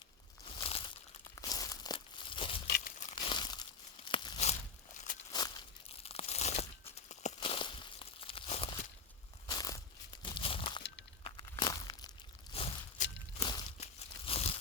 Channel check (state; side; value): quieter; right; 4.9 dB